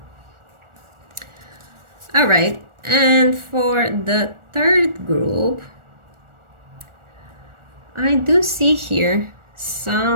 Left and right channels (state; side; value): late; left; 1.4 ms